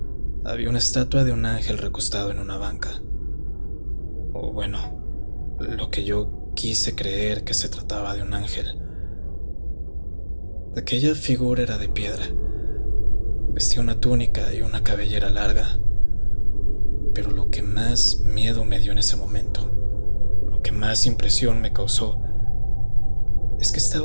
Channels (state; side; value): inverted; both; correlation -1.00